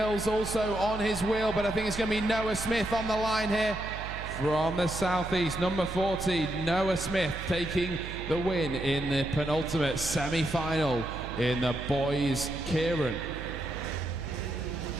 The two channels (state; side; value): noise; right; hum, 9 dB below the sound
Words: also on his wheel, but I think it's going to be Noah Smith on the line here. From the southeast, number 40, Noah Smith taking the win in the penultimate semi-final in the boys' Keirin.